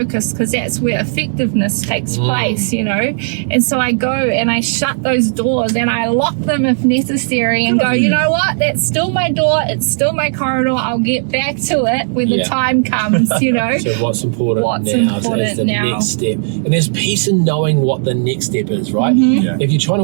Because that's where effectiveness takes place, And so I go and I shut those doors and I lock them if necessary and go, you know what? That's still my door. It's still my corridor. I'll get back to it when the time comes, So what's important now is the next step. And there's peace in knowing what the next step is, right? If you're trying to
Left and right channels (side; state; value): left; silent; digital silence